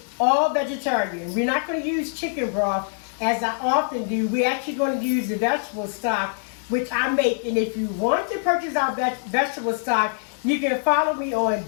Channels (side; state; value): right; silent; digital silence